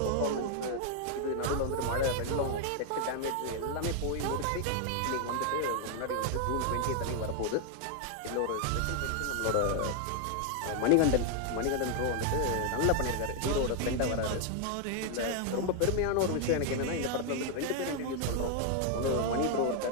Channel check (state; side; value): different; both; correlation 0.00